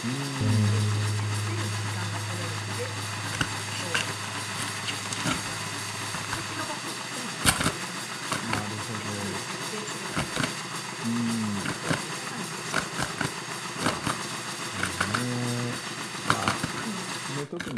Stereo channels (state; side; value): identical; both; correlation 1.00